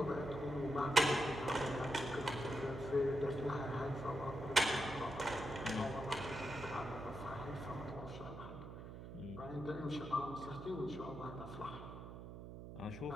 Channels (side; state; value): right; noise; hum, 10 dB below the sound